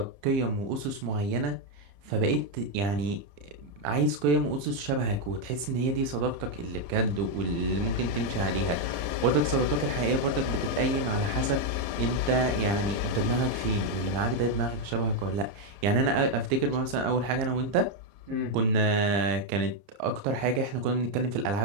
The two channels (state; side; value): late; left; 30 ms